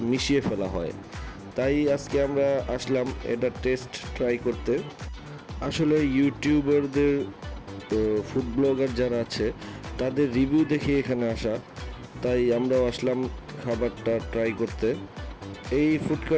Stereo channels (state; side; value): identical; both; correlation 1.00